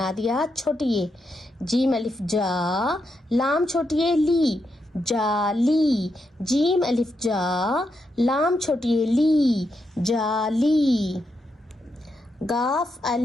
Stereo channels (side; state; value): both; normal; correlation 0.83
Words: دیا چھوٹی یہ. جیم الف جا، لام چھوٹی یہ لی، جالی. جیم الف جا، لام چھوٹی یہ لی، جالی. گاف